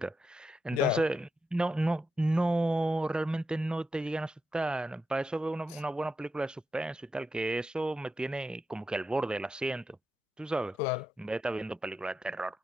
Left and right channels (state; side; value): normal; both; correlation 0.86